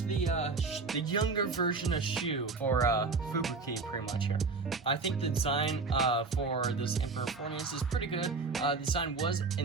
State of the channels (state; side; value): quieter; left; 4.2 dB